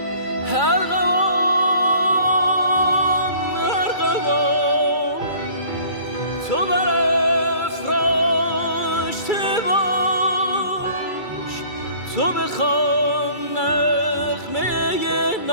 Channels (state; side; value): late; right; 2.3 ms